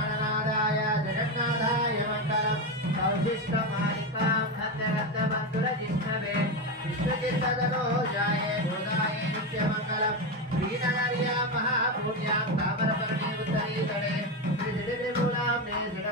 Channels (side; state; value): both; normal; correlation 0.13